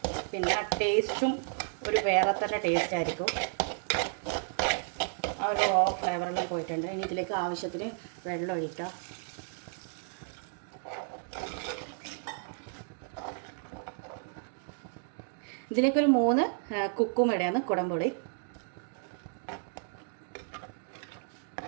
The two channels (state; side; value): silent; left; 56 dB below the other